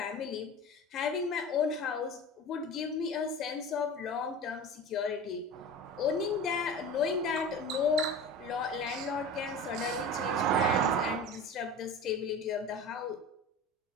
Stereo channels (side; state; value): both; normal; correlation 0.34